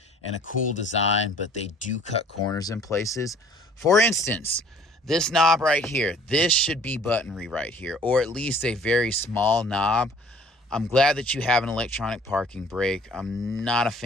and a cool design, but they do cut corners in places. For instance, this knob right here, this should be buttonry right here, or at least a very small knob. I'm glad that you have an electronic parking brake. I'm not a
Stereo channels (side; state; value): both; normal; correlation 0.54